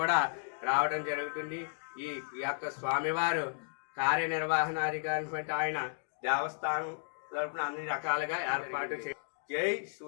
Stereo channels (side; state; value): right; silent; digital silence